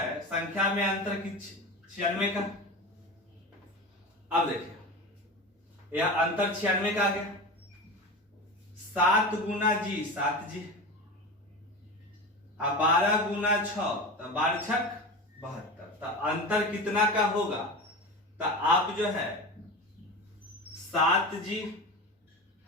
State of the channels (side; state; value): both; normal; correlation 0.28